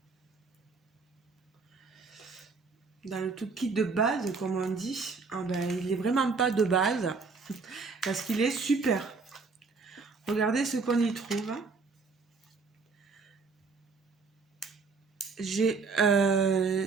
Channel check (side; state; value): left; quieter; 4.5 dB